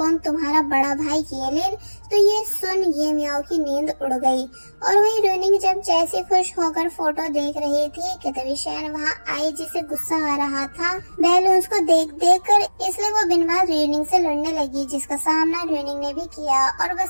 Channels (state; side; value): inverted; both; correlation -1.00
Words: तुम्हारा बड़ा भाई येलिन। तो ये सुन ये म्याओ की नींद उड़ गई। और वही रोइनिंग जब जैसे खुश होकर फोटो देख रही थी कि तभी शैन वहाँ आई जिसे गुस्सा आ रहा था बैलून्स को देख देख कर, इसलिए वो बिन बात रोइनिंग से लड़ने लगी, जिसका सामना रोइनिंग ने भी किया। और